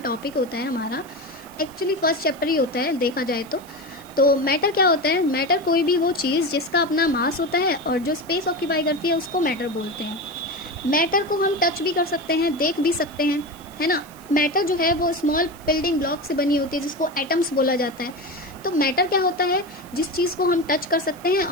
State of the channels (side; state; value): right; noise; hiss, 23 dB below the sound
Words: होता है हमारा. एक्चुअली फर्स्ट चैप्टर ही होता है देखा जाए तो मैटर क्या होता है. मैटर कोई भी वो चीज़ जिसका अपना मास होता है और जो स्पेस ऑक्यूपाई करती है उसको मैटर बोलते हैं. मैटर को हम टच भी कर सकते हैं, देख भी सकते हैं, है ना. मैटर जो है वो स्मॉल बिल्डिंग ब्लॉक से बनी होती है जिसको एटम्स बोला जाता है. तो मैटर क्या होता है, जिस चीज़ को हम टच कर सकते हैं